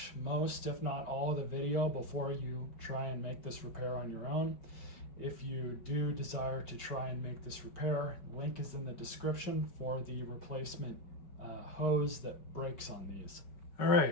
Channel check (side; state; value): right; late; 5.2 ms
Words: most, if not all, of the video before you try and make this repair on your own. If you do desire to try and make this repair, link is in the description for the replacement hose that breaks on these. All